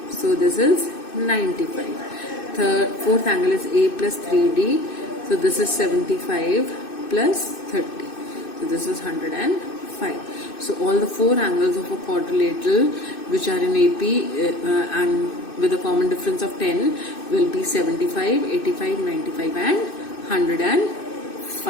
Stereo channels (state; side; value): late; right; 2.6 ms